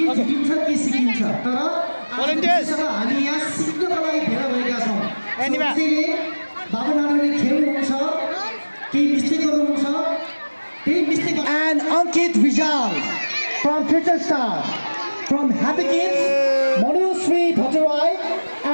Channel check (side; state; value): both; inverted; correlation -1.00